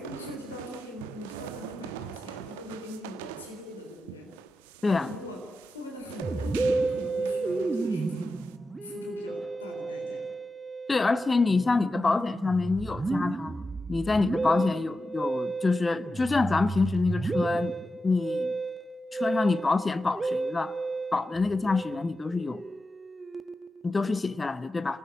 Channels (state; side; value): normal; both; correlation 0.91